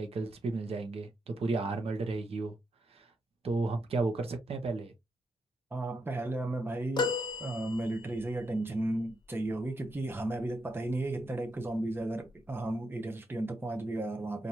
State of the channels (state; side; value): normal; both; correlation 0.82